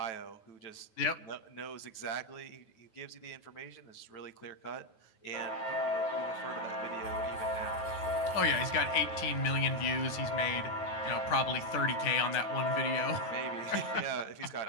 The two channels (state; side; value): late; right; 9.4 ms